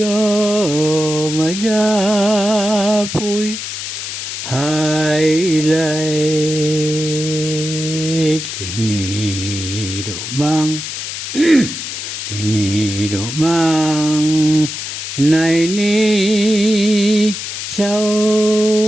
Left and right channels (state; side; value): noise; left; hiss, 6 dB below the sound